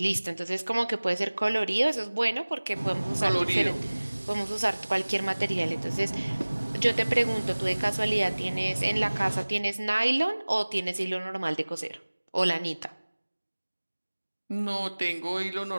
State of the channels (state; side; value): inverted; both; correlation -1.00